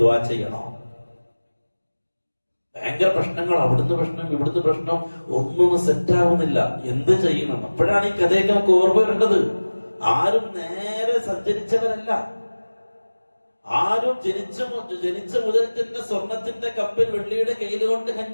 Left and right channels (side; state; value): both; inverted; correlation -1.00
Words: ദുആ ചെയ്യണോ? ഭയങ്കര പ്രശ്നങ്ങൾ, അവിടുന്ന് പ്രശ്നം ഇവിടുന്ന് പ്രശ്നം, ഒന്നും സെറ്റാവുന്നില്ല. എന്ത് ചെയ്യണം? അപ്പോഴാണ് ഈ കഥയൊക്കെ നമുക്ക് ഓർമ്മ വരേണ്ടത്. ആരും നേരെ സഞ്ചരിച്ചവരല്ല, ആരും ജനിച്ച മുതൽ തന്നെ സ്വർണത്തിന്റെ കപ്പിൽ വെള്ളിയുടെ കയ്യിൽ കൊണ്ട്